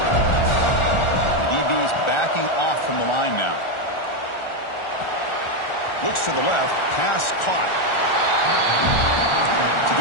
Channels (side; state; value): right; late; 1.4 ms